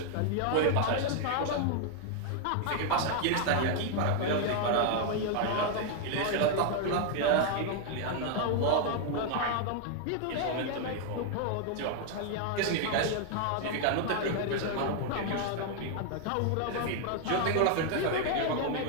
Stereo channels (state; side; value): different; both; correlation 0.00